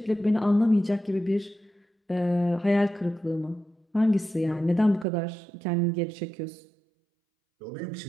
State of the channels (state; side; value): drops out; left; at 5.1 s